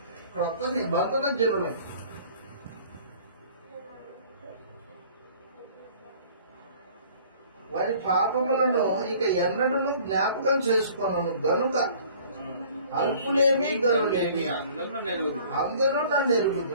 క్రొత్త నిబంధన జనులై. వారి పాపములను ఇక ఎన్నడూ జ్ఞాపకం చేసుకున్నాను గనుక అల్పులేమి గనులేమి అందరూ నన్ను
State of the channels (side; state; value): both; inverted; correlation -0.51